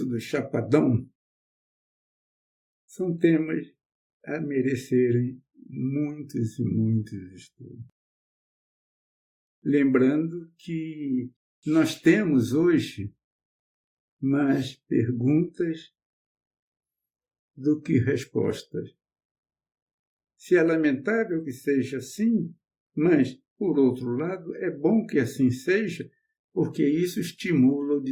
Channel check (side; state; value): both; identical; correlation 1.00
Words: do Chapadão? São temas a merecerem muitos e muitos estudos. Lembrando que nós temos hoje mais perguntas do que respostas. Se é lamentável que seja assim, mas, por outro lado, é bom que assim seja, porque isso estimula o